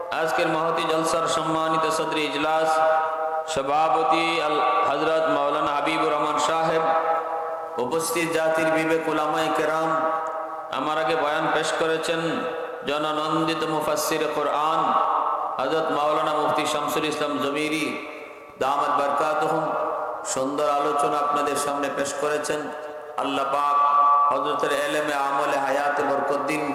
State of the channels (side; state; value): both; identical; correlation 1.00